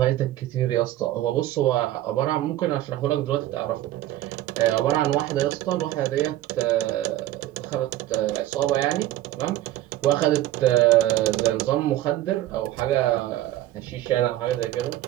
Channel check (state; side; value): quieter; left; 14.5 dB